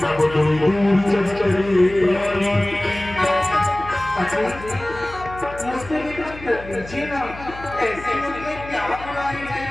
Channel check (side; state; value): left; noise; hum, 15 dB below the sound